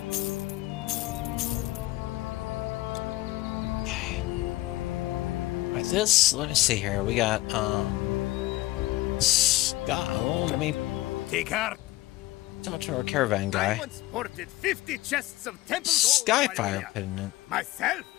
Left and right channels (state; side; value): quieter; right; 18.1 dB